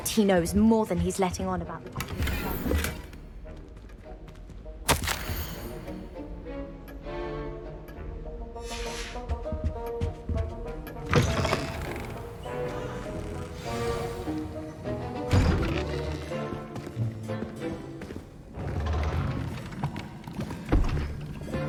he knows more than he's letting on about the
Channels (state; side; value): identical; both; correlation 1.00